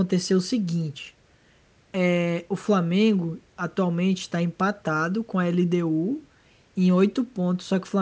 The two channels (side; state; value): both; identical; correlation 1.00